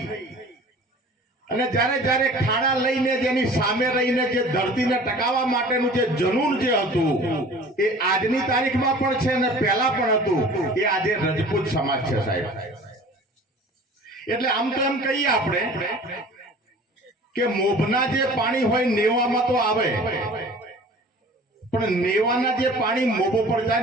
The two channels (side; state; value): both; normal; correlation 0.45